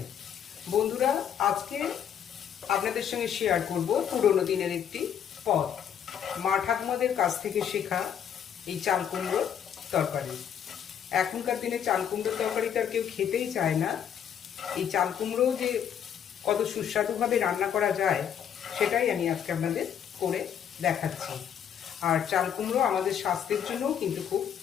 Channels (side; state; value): right; quieter; 8.8 dB